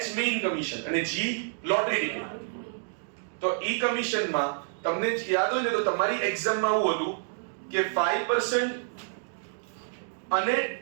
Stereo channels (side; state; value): left; silent; digital silence